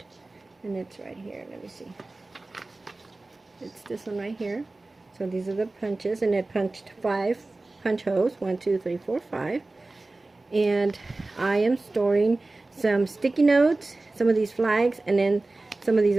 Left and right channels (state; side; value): quieter; left; 3.1 dB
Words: and it's right here. Let me see. It's this one right here. So these are the punches, and it punched 5 punch holes, 1 2 3 4 5. And I am storing some sticky notes, some of these flags, and then some of these